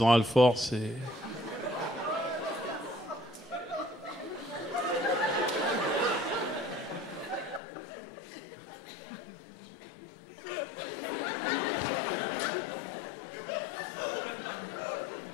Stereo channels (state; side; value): drops out; right; at 7.6 s